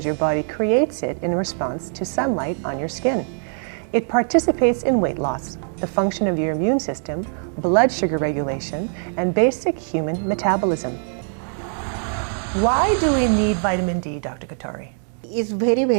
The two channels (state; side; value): silent; left; digital silence